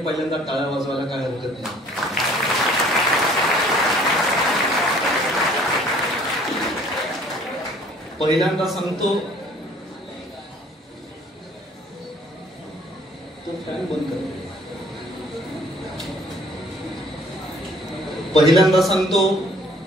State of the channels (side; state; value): both; normal; correlation 0.56